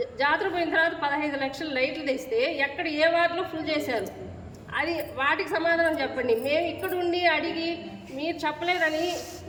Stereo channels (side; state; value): both; identical; correlation 1.00